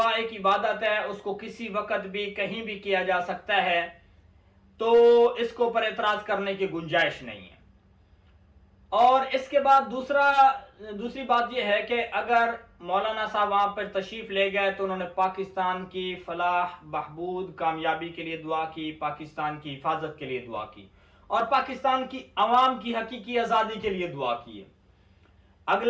ایک عبادت ہے، اس کو کسی وقت بھی کہیں بھی کیا جا سکتا ہے، تو اس کے اوپر اعتراض کرنے کی گنجائش نہیں ہے۔ اور اس کے بعد دوسری بات یہ ہے کہ اگر مولانا صاحب وہاں پر تشریف لے گئے تو انہوں نے پاکستان کی فلاح بہبود کامیابی کے لیے دعا کی، پاکستان کی حفاظت کے لیے دعا کی، اور پاکستان کی عوام کی حقیقی آزادی کے لیے دعا کی ہے۔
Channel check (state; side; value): identical; both; correlation 1.00